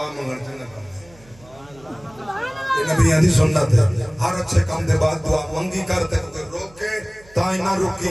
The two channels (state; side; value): noise; right; hum, 25 dB below the sound